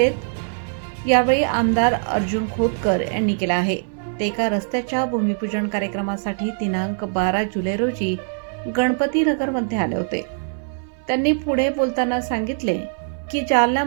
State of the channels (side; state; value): left; silent; 59 dB below the other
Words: यावेळी आमदार अर्जुन खोतकर यांनी केला आहे. ते एका रस्त्याच्या भूमिपूजन कार्यक्रमासाठी दिनांक 12 जुलै रोजी गणपती नगरमध्ये आले होते. त्यांनी पुढे बोलताना सांगितले की